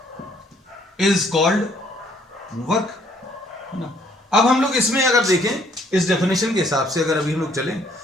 is called work. अब हम लोग इसमें अगर देखें इस डेफिनेशन के हिसाब से अगर अभी हम लोग चलें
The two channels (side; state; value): both; normal; correlation 0.64